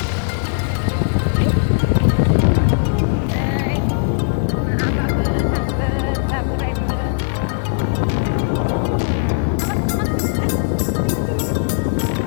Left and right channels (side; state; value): right; silent; 56 dB below the other